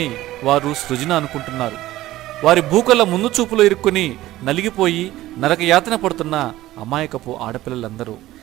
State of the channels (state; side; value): quieter; left; 15.8 dB